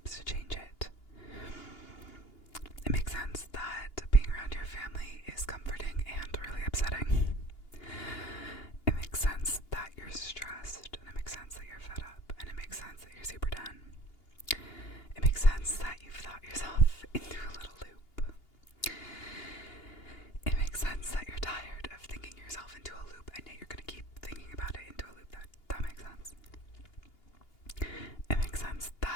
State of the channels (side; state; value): right; late; 2.8 ms